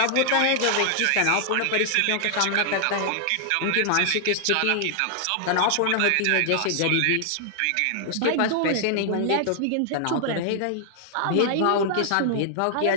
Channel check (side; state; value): both; different; correlation -0.01